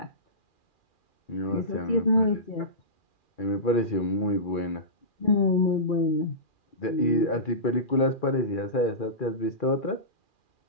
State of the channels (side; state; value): right; late; 2.4 ms